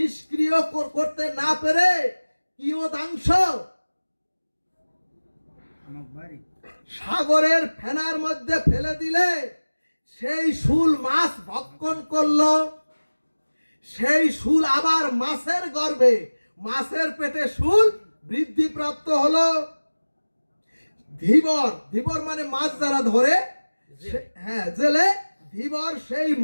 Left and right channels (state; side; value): inverted; both; correlation -1.00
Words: করতে না পেরে কিয়দাংশ সাগরের ফেনার মধ্যে ফেলে দিলে সেই শুল মাছ ভক্ষণ করলো, সেই শুল আবার মাছের গর্ভে মাছের পেটে শুল বৃদ্ধিপ্রাপ্ত হলো। ধীবর, ধীবর মানে মাছ যারা ধরে, হ্যাঁ জেলে, ধীবর সেই